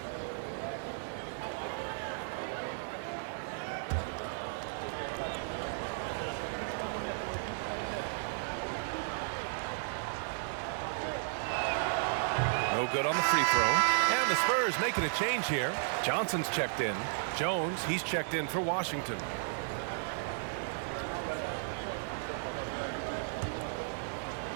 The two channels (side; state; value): left; silent; digital silence